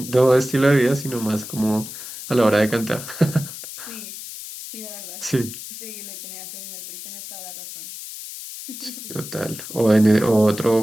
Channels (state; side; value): noise; left; hiss, 11 dB below the sound